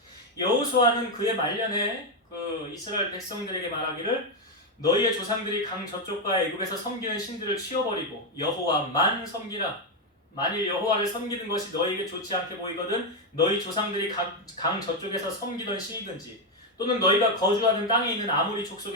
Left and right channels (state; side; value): normal; both; correlation 0.05